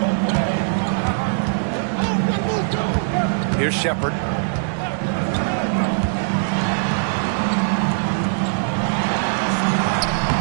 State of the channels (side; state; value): left; silent; 65 dB below the other